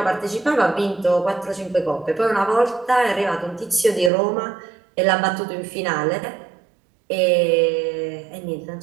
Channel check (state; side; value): drops out; left; at 4.1 s